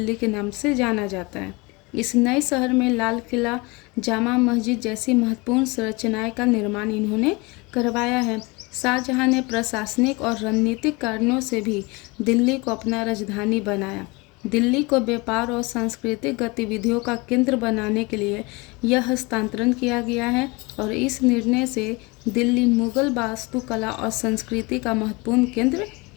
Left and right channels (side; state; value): right; quieter; 25.9 dB